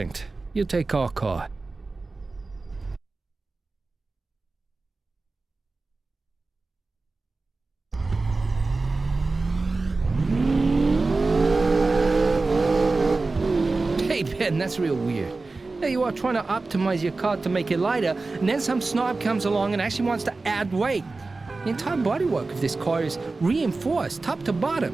You take our car. Hey, Ben, that's real weird. There you are trying to optimize your car to make it lighter, and then some snob comes along and actually wants to add weight. The entire bodywork of this car is reinforced, top to bottom.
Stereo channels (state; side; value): quieter; left; 3.6 dB